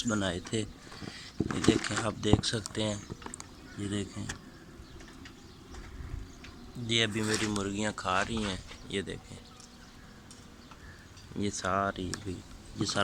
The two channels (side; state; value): both; identical; correlation 1.00